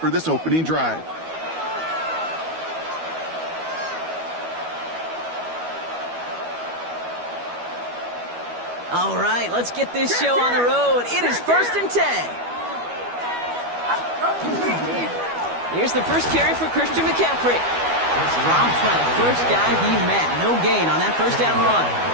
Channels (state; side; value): late; left; 12 ms